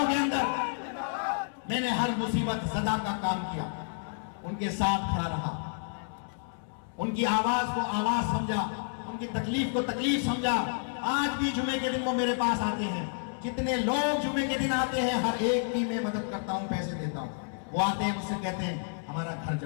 के अंदर मैंने हर मुसीबत सदा का काम किया, उनके साथ खड़ा रहा, उनकी आवाज को आवाज समझा, उनकी तकलीफ को तकलीफ समझा। आज भी जुमे के दिन वो मेरे पास आते हैं, जितने लोग जुमे के दिन आते हैं हर एक की मैं मदद करता हूं, पैसे देता हूं। वो आते हैं मुझसे कहते हैं हमारा घर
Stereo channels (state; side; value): silent; right; 58 dB below the other